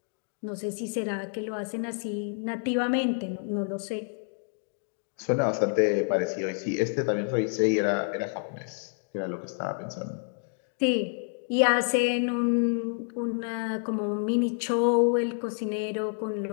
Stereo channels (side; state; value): right; silent; 59 dB below the other